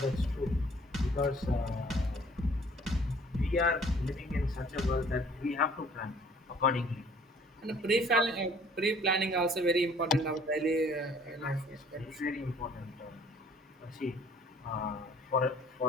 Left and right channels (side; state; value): both; normal; correlation 0.55